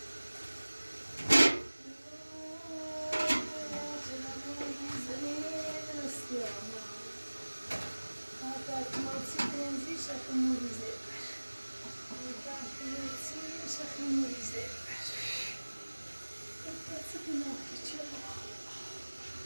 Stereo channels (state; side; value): inverted; both; correlation -1.00